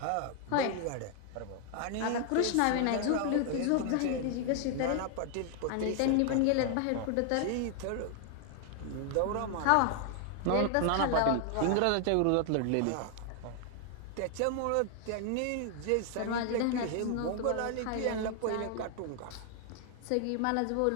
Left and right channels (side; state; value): both; different; correlation 0.00